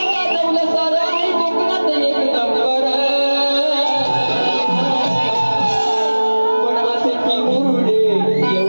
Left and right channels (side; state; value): both; inverted; correlation -1.00